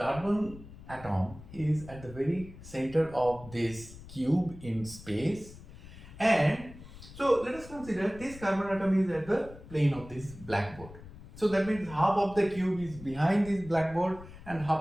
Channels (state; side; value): noise; left; rumble, 17 dB below the sound